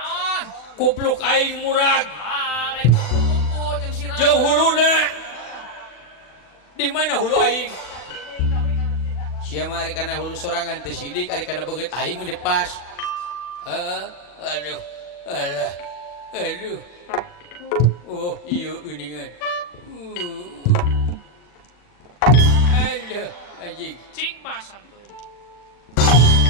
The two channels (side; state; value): right; late; 40 ms